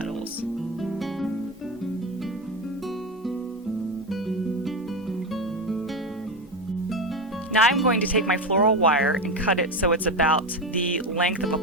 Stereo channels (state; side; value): normal; both; correlation 0.16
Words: Now I'm going to take my floral wire and cut it so it's about the length of a